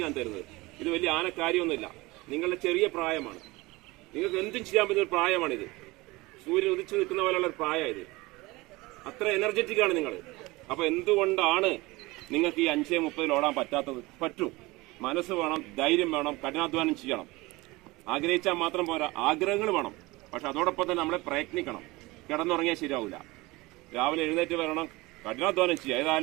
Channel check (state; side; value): quieter; left; 21.9 dB